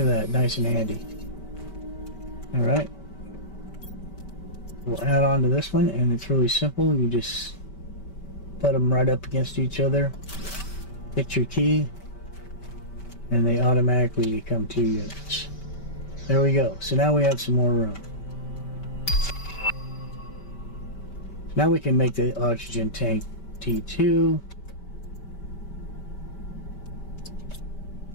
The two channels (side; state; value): right; late; 5.2 ms